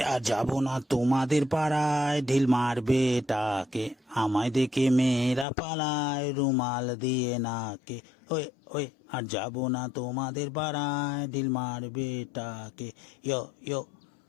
আর যাবো না তোমাদের পাড়ায়, ঢিল মারবে টাকে, আমায় দেখে মেয়েরা পালায় রুমাল দিয়ে নাকে। ওই ওই আর যাবো না তোমাদের পাড়ায়, ঢিল মারবে টাকে। ইয়ো ইয়ো।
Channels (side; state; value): right; drops out; at 5.5 s